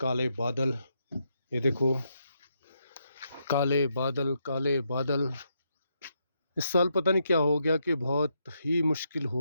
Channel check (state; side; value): inverted; both; correlation -0.80